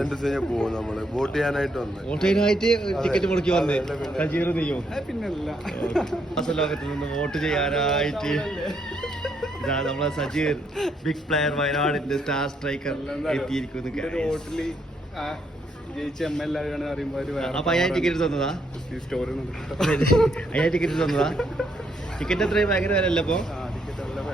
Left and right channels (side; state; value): both; normal; correlation 0.74